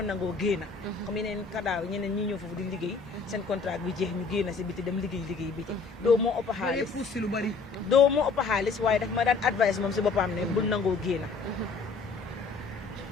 nangoo génna comme yeneen kadaaw ñeneen ñi ñëw foofu di liggéey seen contrat bi jeex ñu génna si biti dem liggéey biti doo moo ëpp xaalis doo moo ëpp xaalis waaye daf ma daan advice moom si boppam ne bul nangoo génna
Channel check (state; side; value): quieter; right; 4.5 dB